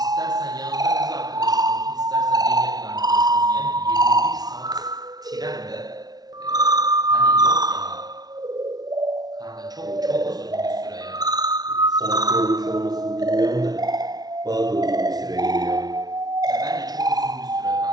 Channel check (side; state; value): left; late; 0.19 ms